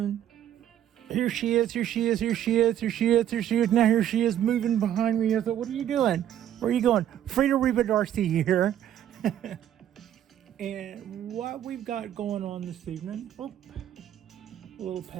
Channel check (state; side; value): quieter; left; 10.9 dB